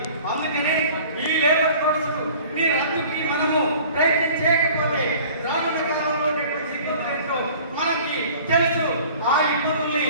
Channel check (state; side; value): inverted; both; correlation -0.47